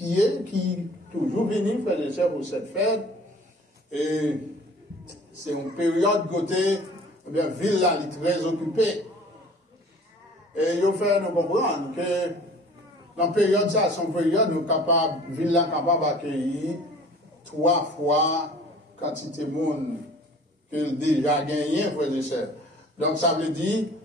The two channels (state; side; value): normal; both; correlation 0.48